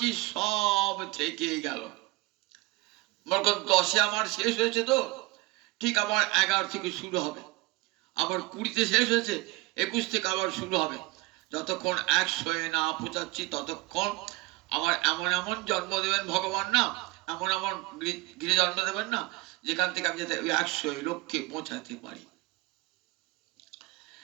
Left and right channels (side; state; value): left; quieter; 21.6 dB